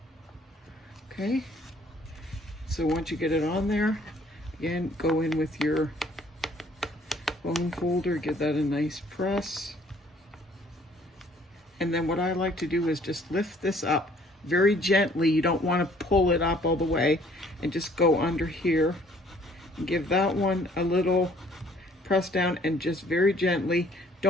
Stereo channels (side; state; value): both; normal; correlation 0.59